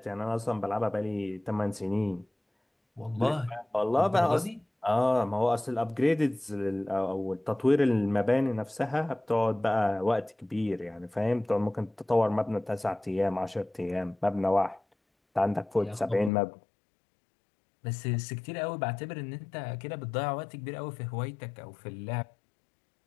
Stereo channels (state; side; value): drops out; right; at 16.3 s